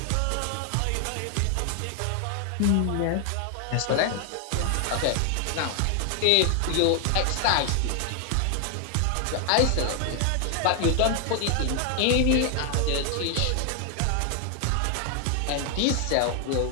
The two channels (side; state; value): both; different; correlation 0.00